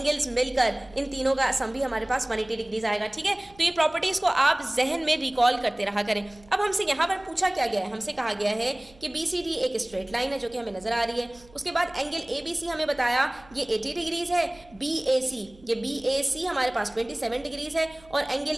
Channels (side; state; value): right; noise; hum, 26 dB below the sound